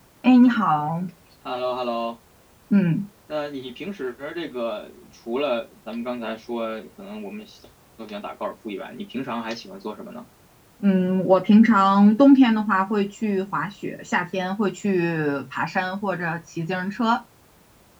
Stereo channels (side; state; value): both; identical; correlation 1.00